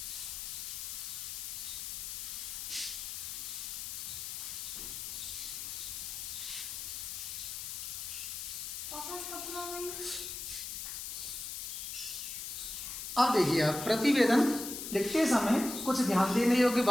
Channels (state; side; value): noise; left; hiss, 6 dB below the sound